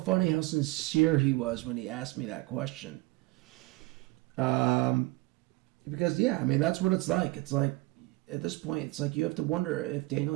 how sincere he was when he asked me that question. Because, that's what it's like. It's like, at this point, it's like you have to wonder if Daniel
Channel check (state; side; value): quieter; left; 21.2 dB